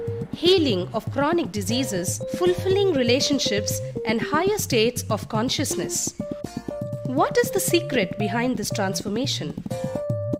healing of chronic diseases, fulfilling relationships, and higher states of consciousness. What is the secret behind this transformation?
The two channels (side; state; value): both; identical; correlation 1.00